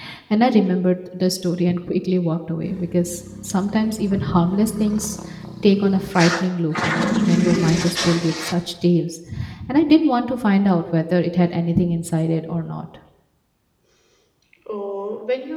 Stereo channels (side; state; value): both; identical; correlation 1.00